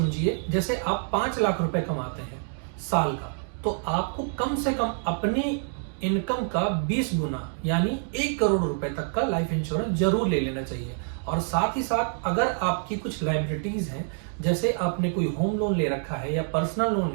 जैसे आप 5 लाख रुपए कमाते हैं साल का, तो आपको कम से कम अपनी इनकम का 20 गुना यानी 1 करोड़ रुपए तक का लाइफ इंश्योरेंस जरूर ले लेना चाहिए। और साथ ही साथ अगर आपकी कुछ लायबिलिटीज हैं, जैसे आपने कोई होम लोन ले रखा है या पर्सनल लोन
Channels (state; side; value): silent; left; 57 dB below the other